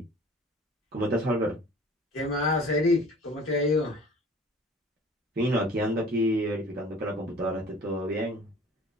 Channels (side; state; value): both; normal; correlation 0.46